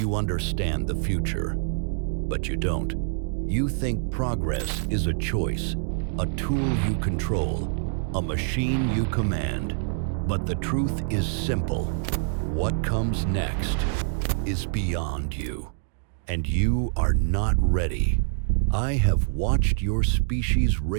understand the future, but you don't. You think progress is a choice, a tool you control, a machine you command. But the truth is simple. What comes next is beyond you, and you are not ready. I have watched your species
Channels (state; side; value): silent; left; digital silence